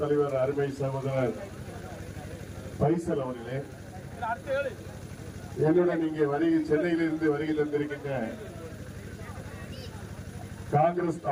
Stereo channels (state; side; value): identical; both; correlation 1.00